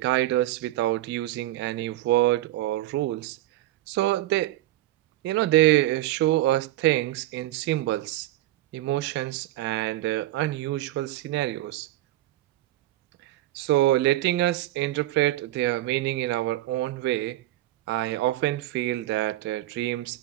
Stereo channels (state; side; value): quieter; left; 15.5 dB